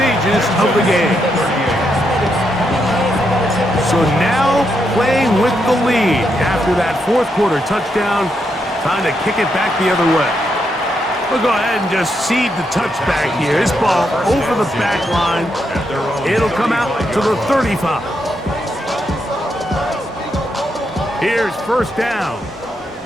of the game. So now playing with the lead after that fourth quarter touchdown. Time to kick it back the other way. We'll go ahead and just seed the touchback here. This ball over the back line. It'll come out to the 35. Here's first down.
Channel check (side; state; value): both; normal; correlation 0.81